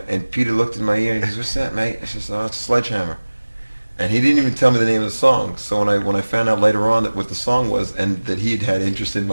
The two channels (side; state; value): both; inverted; correlation -1.00